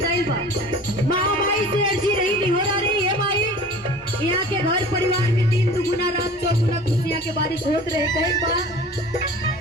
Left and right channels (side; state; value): both; normal; correlation 0.42